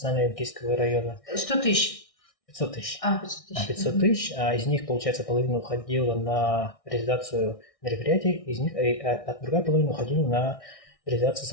венгерского района. 100 тысяч. 500 тысяч. 500 тысяч. 500 тысяч, а из них, получается, половина уходила на реализацию мероприятий, из них, а другая половина уходила на реализацию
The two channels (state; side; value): late; right; 1.6 ms